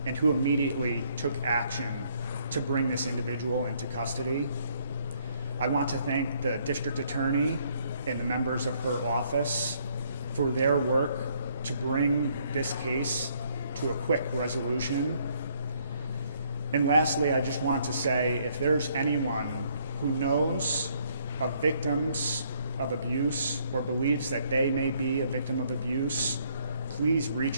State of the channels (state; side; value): inverted; both; correlation -0.67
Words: and who immediately took action to bring this individual into custody. I want to thank the district attorney and the members of her office for their work to bring this case to a quick resolution. And lastly, I just want to say, if there's anyone who knows of victims of abuse or believes that they may be a victim of abuse, please